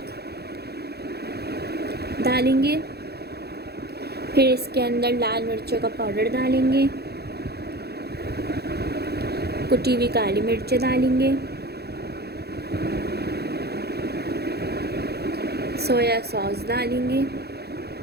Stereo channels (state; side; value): late; left; 0.47 ms